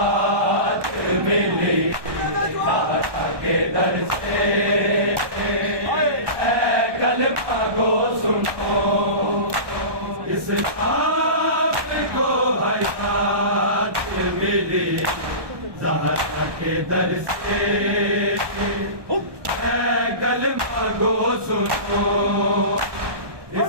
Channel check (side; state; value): left; late; 1.2 ms